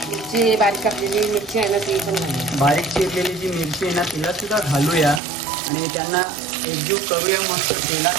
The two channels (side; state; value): left; drops out; at 5.2 s